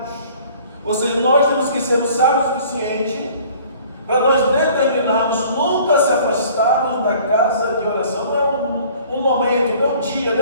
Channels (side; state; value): both; inverted; correlation -0.52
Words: Ou seja, nós temos que ser sábios o suficiente para nós determinarmos nunca se afastarmos da casa de oração. Não é um momento, não um dia,